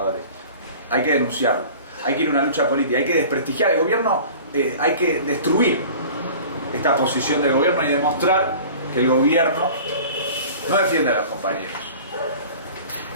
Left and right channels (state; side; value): inverted; both; correlation -0.42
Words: Hay que denunciarlo, hay que ir a una lucha política, hay que desprestigiar el gobierno, hay que destruir esta posición del gobierno y demostrar que el gobierno no defiende a los compañeros.